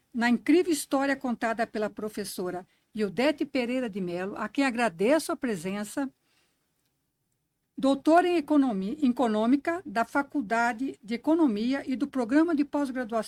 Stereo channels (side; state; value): both; identical; correlation 1.00